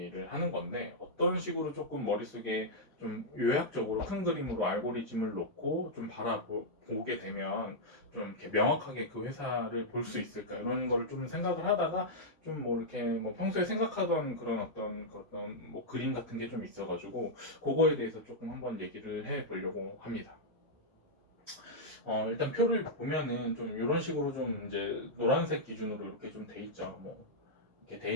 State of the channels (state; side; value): normal; both; correlation -0.06